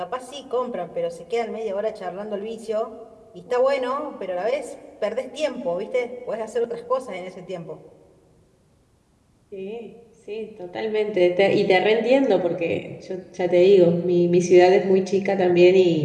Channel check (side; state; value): both; identical; correlation 1.00